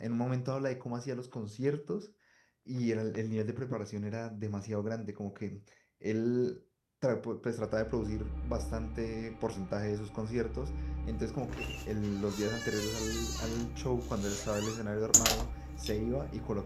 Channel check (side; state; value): both; identical; correlation 1.00